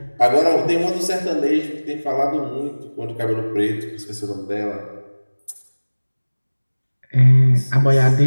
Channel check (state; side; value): inverted; both; correlation -1.00